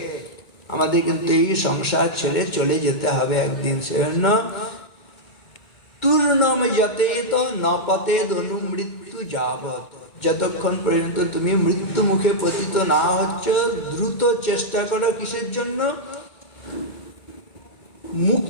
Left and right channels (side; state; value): right; late; 2.2 ms